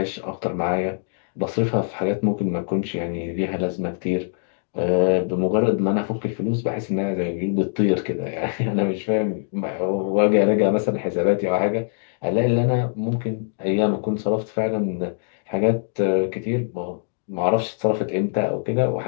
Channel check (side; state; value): right; silent; digital silence